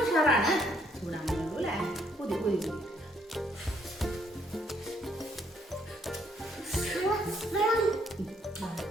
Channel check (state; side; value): normal; both; correlation 0.69